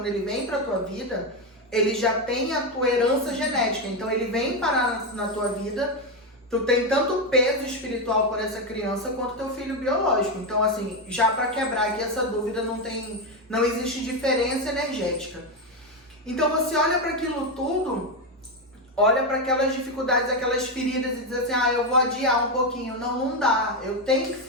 ele vem pra tua vida, ele já tem a tua herança genética. Então ele vem parar na tua vida, tu tem tanto peso espiritual por essa criança quanto teu filho biológico. Então, assim, já pra quebrar aqui essa dúvida, não existe diferença energética. Então você olha para aquilo tudo, olha para aquelas dificuldades, aquelas feridas e diz assim, eu vou adiar um pouquinho. Não dá, eu tenho que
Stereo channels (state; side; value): normal; both; correlation 0.09